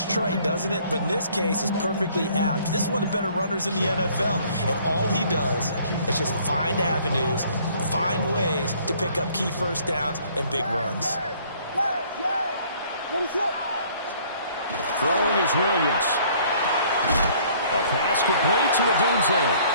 trite, doesn't it? But in this case, it's perfectly apt. This is one of the better runners in the NFL. And all he does is just find avenues, find ways to pick up key 1st downs and big runs. Throwing is Williams. A pass complete to Odunze.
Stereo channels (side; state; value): both; inverted; correlation -0.58